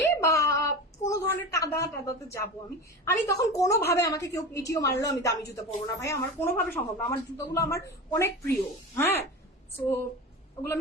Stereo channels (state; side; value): normal; both; correlation 0.28